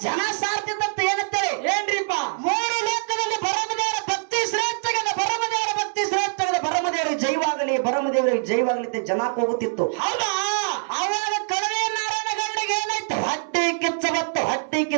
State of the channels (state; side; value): silent; left; 58 dB below the other